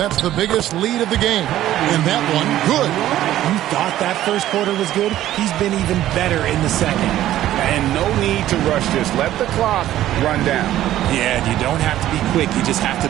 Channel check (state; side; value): quieter; left; 13.3 dB